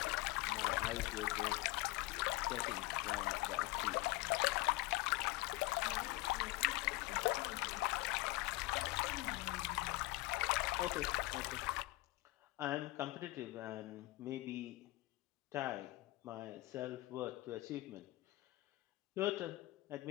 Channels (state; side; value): quieter; right; 20.2 dB